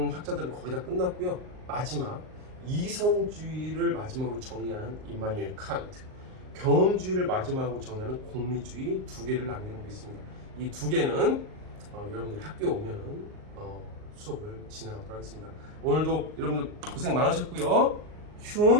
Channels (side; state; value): left; late; 38 ms